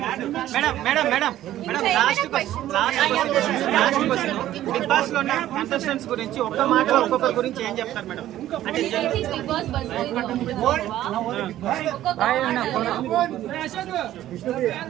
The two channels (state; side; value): quieter; left; 13.3 dB